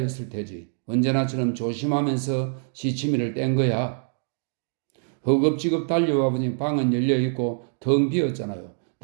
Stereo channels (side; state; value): left; silent; digital silence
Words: 테지. 언제나처럼 조심하면서 시치미를 뗀 거야. 허겁지겁 달려와 보니 방은 열려있고 텅 비었잖아요.